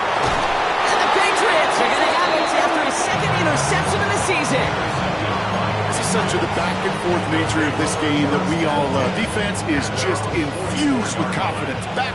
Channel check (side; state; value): both; identical; correlation 1.00